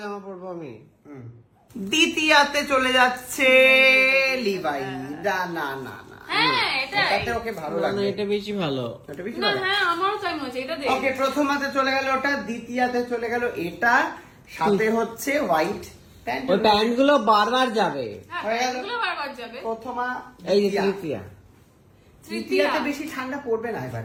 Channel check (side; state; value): both; identical; correlation 1.00